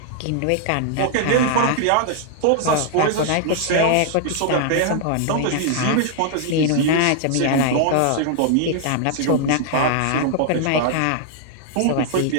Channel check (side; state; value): both; different; correlation 0.00